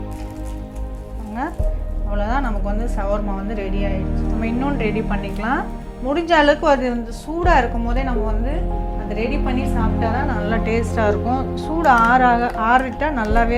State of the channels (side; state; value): both; identical; correlation 1.00